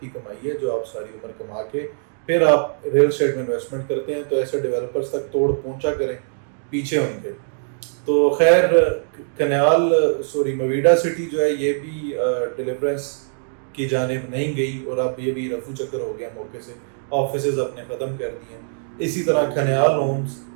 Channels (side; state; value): left; silent; digital silence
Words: کی کمائی ہے جو آپ ساری عمر کما کے پھر آپ ریل اسٹیٹ میں انویسٹمنٹ کرتے ہیں. تو ایسے ڈیولپرز تک توڑ پہنچا کریں پیچھے ان کے. تو خیر مویڈا سٹی جو ہے یہ بھی ڈیلیورنس کی جانب نہیں گئی، اور اب یہ بھی رفو چکر ہو گیا موقع سے. آفیسز اپنے ختم کر دیے. اسی طرح کھنیال ہومز